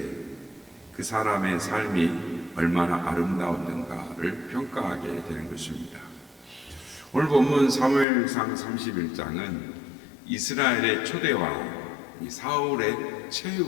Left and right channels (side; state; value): right; drops out; at 8.1 s